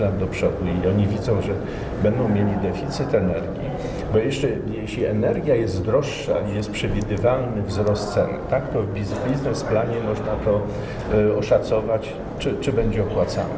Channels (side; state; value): both; identical; correlation 1.00